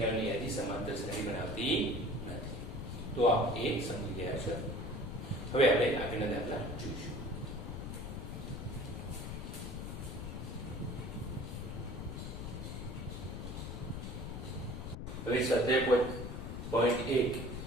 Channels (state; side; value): noise; left; rumble, 6 dB below the sound